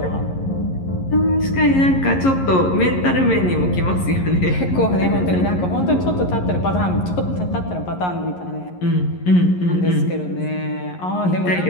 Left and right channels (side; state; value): right; late; 11 ms